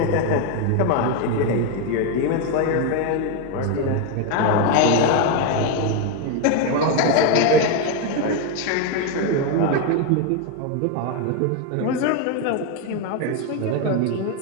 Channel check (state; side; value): different; both; correlation 0.02